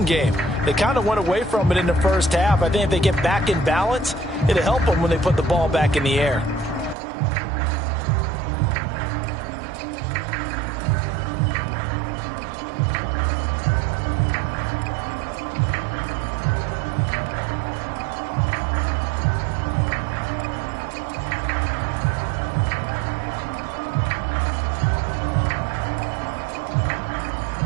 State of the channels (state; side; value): drops out; left; at 7.0 s